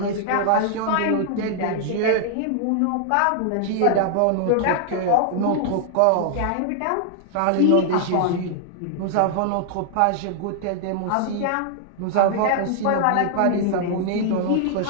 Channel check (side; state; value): both; different; correlation 0.00